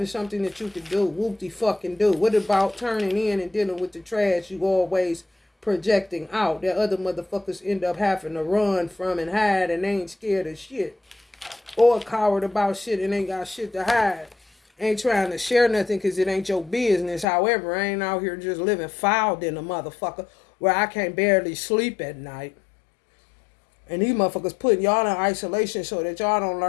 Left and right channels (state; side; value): drops out; right; at 17.2 s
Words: something that you can do. Whoop-de-fucking do. What about turning in and dealing with the trash you always projecting out that other motherfuckers end up having to run from and hide and they ain't scared of shit? Or coward about shit and ain't got shit to hide. Ain't trying to share nothing because it ain't your business. However, I ain't out here just living fouled in a motherfucker where I can't barely sleep at night. And these motherfuckers putting y'all in isolation so that y'all don't